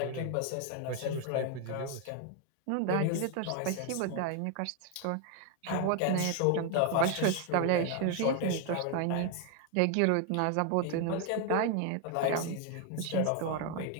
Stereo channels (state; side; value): different; both; correlation 0.01